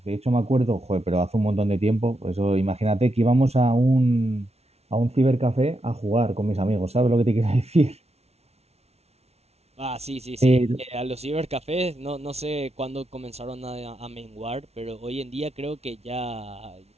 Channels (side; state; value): left; late; 0.31 ms